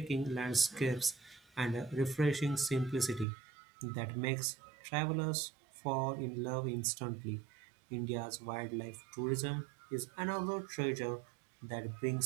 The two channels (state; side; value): drops out; left; at 3.2 s